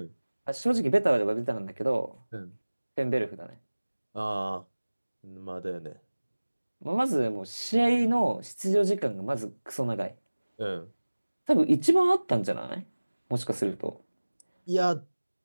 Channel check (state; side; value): inverted; both; correlation -1.00